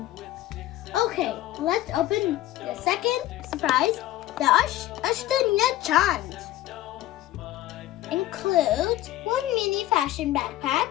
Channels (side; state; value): right; quieter; 14.9 dB